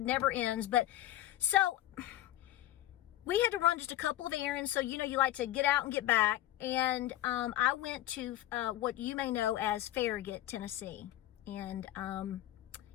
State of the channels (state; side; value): quieter; right; 14.1 dB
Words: ends. But so we had to run just a couple of errands. So, you know, you like to get out and get back. And I went to what you may know as Farragut, Tennessee. And